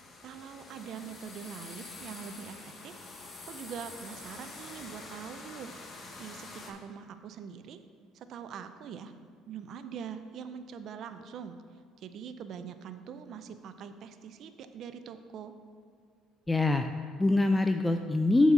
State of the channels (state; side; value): normal; both; correlation 0.88